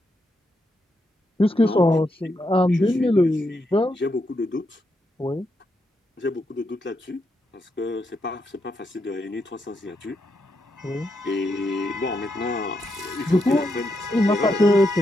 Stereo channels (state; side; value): normal; both; correlation 0.82